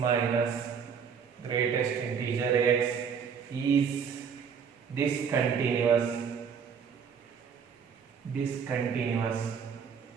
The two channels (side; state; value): left; quieter; 6.8 dB